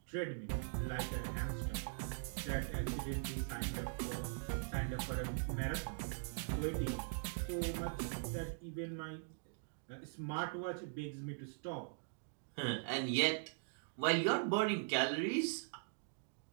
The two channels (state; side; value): silent; left; digital silence